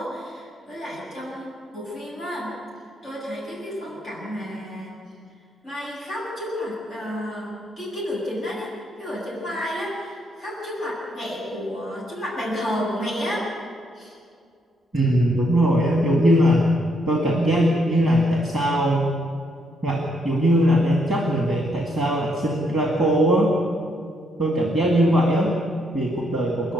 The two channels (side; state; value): both; normal; correlation 0.74